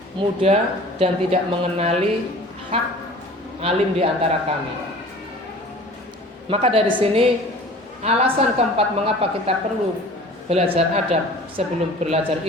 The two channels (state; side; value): normal; both; correlation 0.44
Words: muda dan tidak mengenali hak alim di antara kami. Maka dari sini alasan keempat mengapa kita perlu belajar adab sebelum belajar